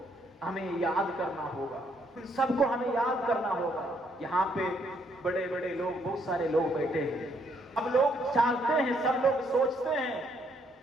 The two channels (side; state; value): both; normal; correlation 0.70